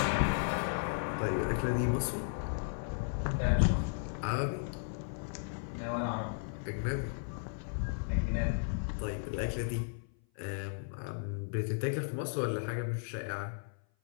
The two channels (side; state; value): right; silent; 54 dB below the other